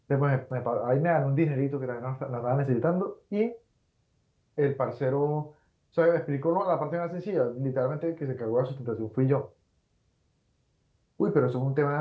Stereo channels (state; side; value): identical; both; correlation 1.00